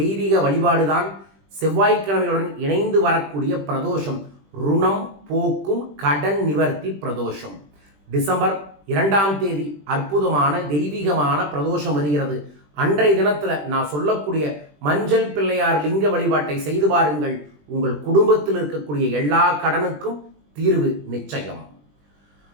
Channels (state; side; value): late; left; 20 ms